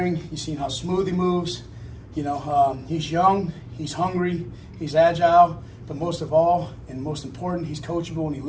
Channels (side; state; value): both; identical; correlation 1.00